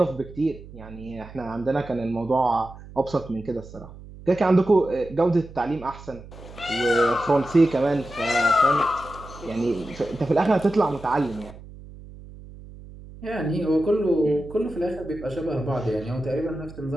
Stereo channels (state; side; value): noise; right; hum, 17 dB below the sound